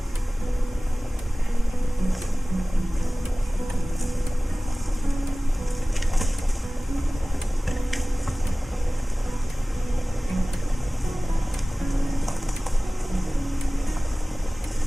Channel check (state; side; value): normal; both; correlation 0.98